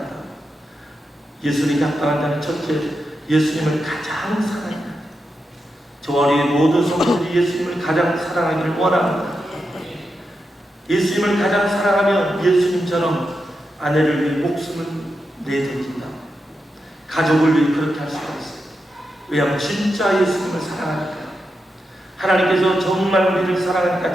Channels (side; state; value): both; normal; correlation 0.87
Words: 예수님께 합당한 자는 첫째, 예수님을 가장 사랑합니다. 저와 우리 모든 성도들이 예수님을 가장 사랑하기를 원합니다. 예수님을 가장 사랑하면 예수님처럼 아내를 위해 목숨을 내던진다. 가족을 위해 그렇게 할 수가 있어요. 왜냐하면 진짜 예수님을 사랑하니까. 하나님께서 정말 우리를 사랑하니까